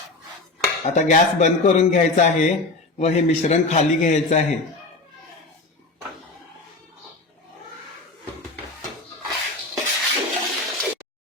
आता गॅस बंद करून घ्यायचा आहे व हे मिश्रण खाली घ्यायचं आहे.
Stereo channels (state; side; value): quieter; right; 3.2 dB